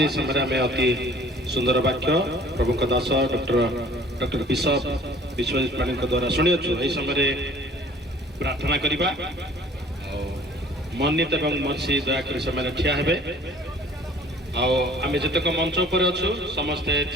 समय में अति सुंदर वाक्य प्रभु का दास डॉक्टर बिशप विश्वजीत पाणी द्वारा शुणी यही समय प्रार्थना करवा मन्नित एवं मर्सी दयाकोरी से ठिया हेबे आम जितक मंच उपर अच्छु समस्ते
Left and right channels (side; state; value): both; normal; correlation 0.51